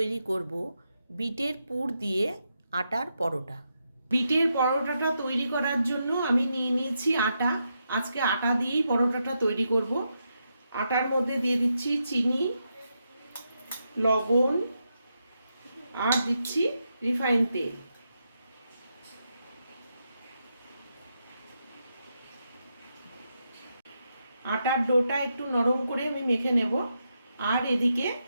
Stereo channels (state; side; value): inverted; both; correlation -0.83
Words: করব বিটের পুর দিয়ে আটার পরোটা। বিটের পরোটাটা তৈরি করার জন্য আমি নিয়ে নিয়েছি আটা। আজকে আটা দিয়েই পরোটাটা তৈরি করব। আটার মধ্যে দিয়ে দিচ্ছি চিনি, লবণ আর দিচ্ছি রিফাইন তেল। আটার ডোটা একটু নরম করে আমি মেখে নেব। আর এদিকে